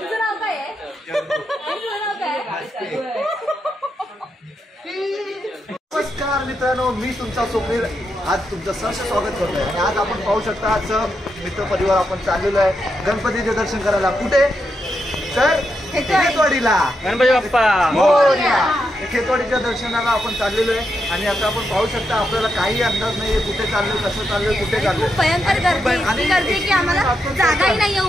नाव काय आहे? तुझं नाव काय आहे? नमस्कार मित्रांनो, मी तुमचा स्वप्नील आज तुमचं सहर्ष स्वागत करतोय. आणि आज आपण पाहू शकता आज मित्र परिवार आपण चाललेलो आहे गणपतीचे दर्शन करायला. कुठे तर खेतवाडीला. गणपती बाप्पा खेतवाडीच्या दर्शनाला आपण चाललेलो आहे. आणि आता आपण पाहू शकता आपल्याला काही अंदाज नाहीये कुठे चाललोय, कसं चाललोय, कुठे चाललोय. भयंकर गर्दी की आम्हाला जागाही नाहीये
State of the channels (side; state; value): both; normal; correlation 0.83